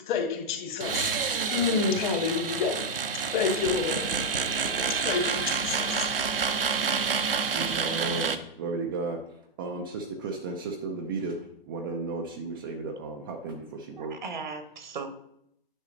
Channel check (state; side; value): normal; both; correlation 0.01